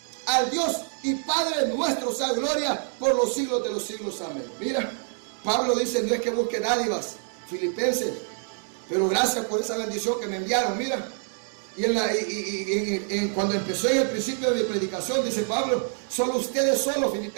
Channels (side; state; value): left; silent; 57 dB below the other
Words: Al Dios y Padre nuestro sea gloria por los siglos de los siglos. Amén. Mira, Pablo dice: no es que busque dádivas, filipenses, pero gracias por esa bendición que me enviaron. Mira, y cuando empezó en el principio de mi predicación, dice Pablo: solo ustedes solos,